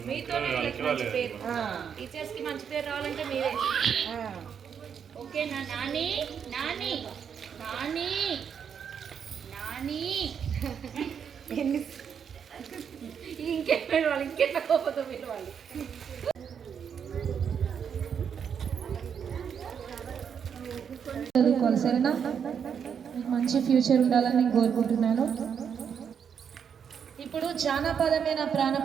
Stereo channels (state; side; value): quieter; left; 7.4 dB